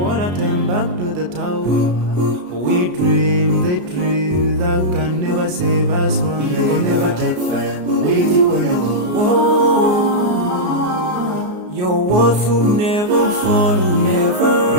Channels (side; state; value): left; late; 33 ms